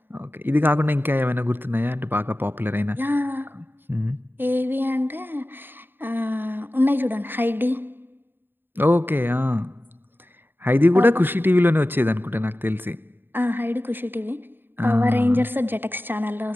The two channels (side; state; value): left; late; 0.097 ms